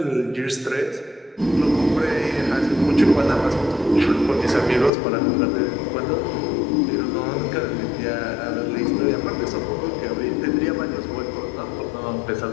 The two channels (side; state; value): right; drops out; at 4.9 s